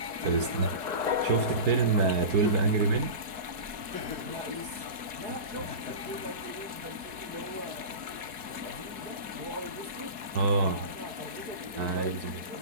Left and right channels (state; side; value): late; left; 4.6 ms